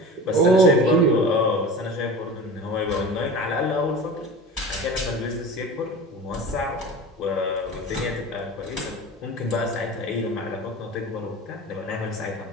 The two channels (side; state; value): both; normal; correlation 0.34